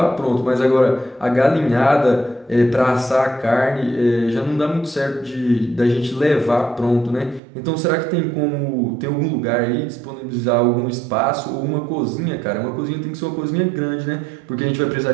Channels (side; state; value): left; drops out; at 7.4 s